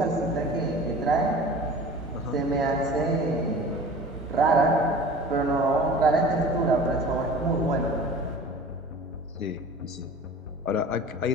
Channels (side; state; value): both; normal; correlation 0.41